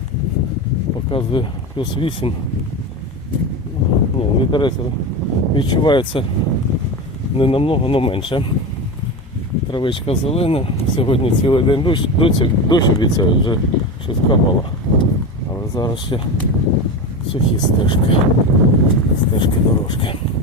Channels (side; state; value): both; normal; correlation 0.22